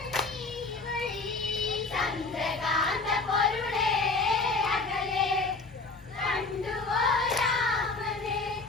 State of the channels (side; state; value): right; quieter; 3.7 dB